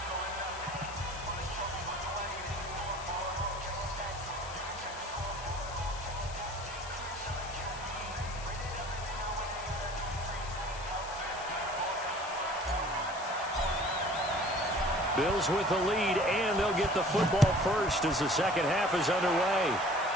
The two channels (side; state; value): left; noise; hiss, 14 dB below the sound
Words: Bills with the lead, and they'll get the football first as the second half is underway.